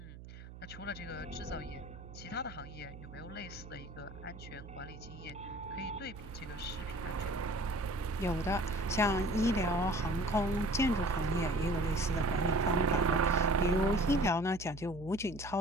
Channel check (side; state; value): right; noise; hum, 15 dB below the sound